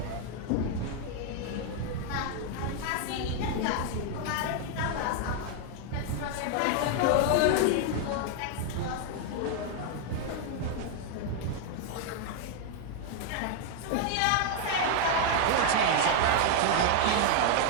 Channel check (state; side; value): different; both; correlation 0.00